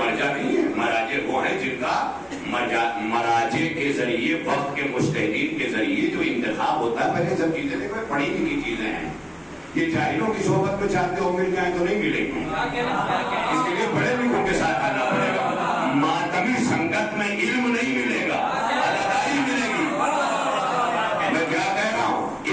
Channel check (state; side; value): identical; both; correlation 1.00